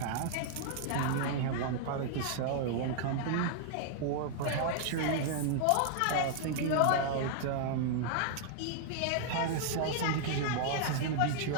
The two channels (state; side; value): different; both; correlation -0.01